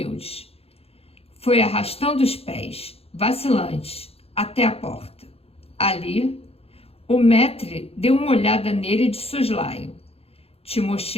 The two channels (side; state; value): right; late; 0.29 ms